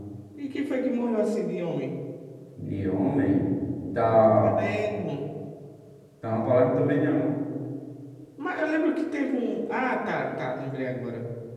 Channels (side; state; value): both; identical; correlation 1.00